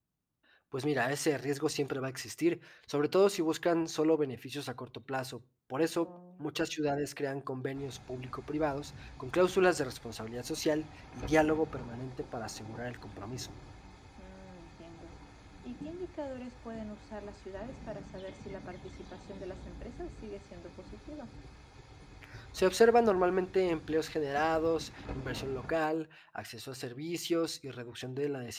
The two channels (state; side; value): identical; both; correlation 1.00